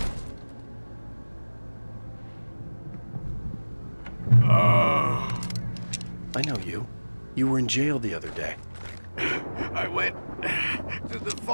I know you. You were in jail the other day. I went to the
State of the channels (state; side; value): inverted; both; correlation -1.00